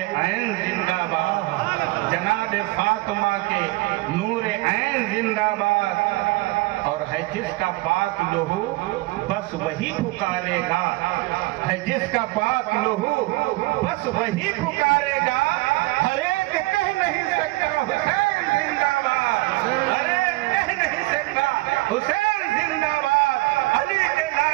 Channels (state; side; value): quieter; left; 21.4 dB